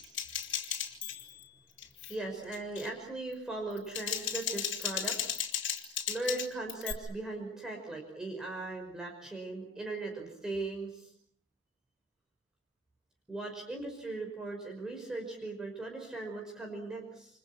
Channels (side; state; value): both; normal; correlation 0.44